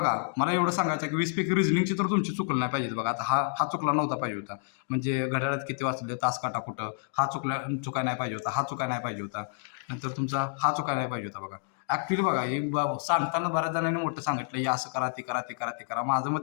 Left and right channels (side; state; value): right; silent; digital silence